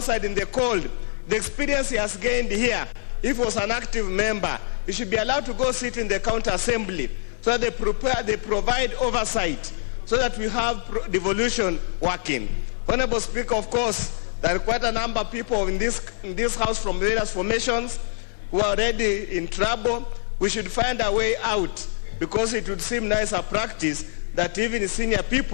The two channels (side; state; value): right; silent; digital silence